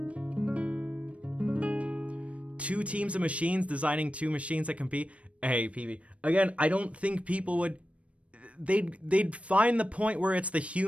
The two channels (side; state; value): left; late; 0.063 ms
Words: 2 teams of machines designing 2 machines that compete. Hey, PB. Again, I don't think people would, they'd find the point where it's the